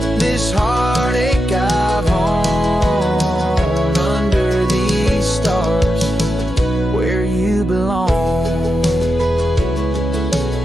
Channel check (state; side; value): normal; both; correlation 0.88